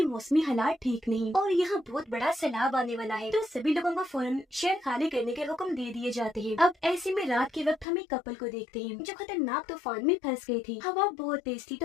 मौसमी हालात ठीक नहीं और यहाँ बहुत बड़ा सैलाब आने वाला है। तो सभी लोगों को फौरन शहर खाली करने के हुक्म दे दिए जाते हैं। अब ऐसे में रात के वक्त हम एक कपल को देखते हैं जो खतरनाक तूफान में फंस गए थे। हवा बहुत तेज थी,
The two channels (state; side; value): drops out; right; at 7.9 s